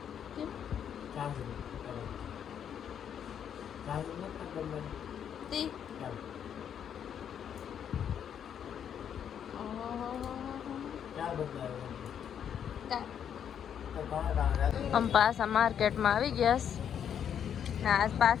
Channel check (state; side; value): quieter; right; 8.7 dB